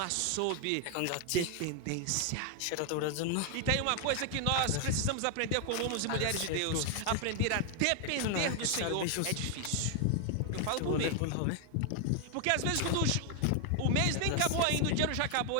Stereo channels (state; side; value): different; both; correlation 0.00